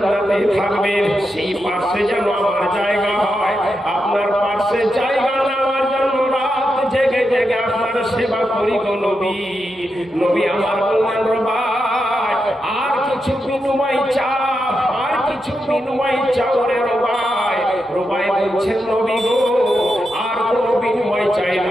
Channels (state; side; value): normal; both; correlation 0.86